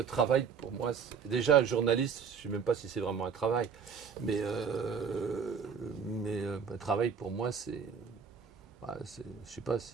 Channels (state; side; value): quieter; left; 6.4 dB